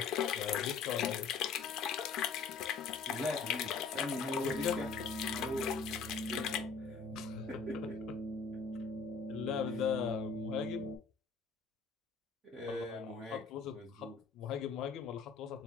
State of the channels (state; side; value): quieter; right; 5.2 dB